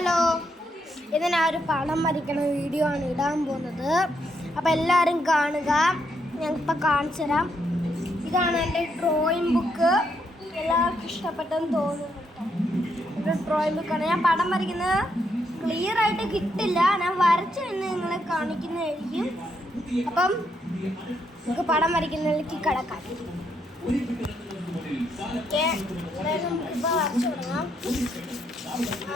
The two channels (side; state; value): both; normal; correlation 0.77